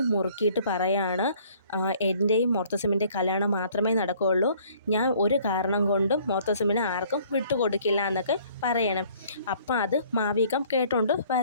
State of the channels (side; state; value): both; inverted; correlation -0.57